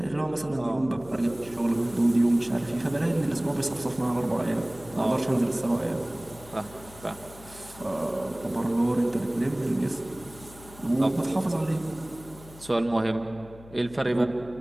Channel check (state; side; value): noise; left; hum, 20 dB below the sound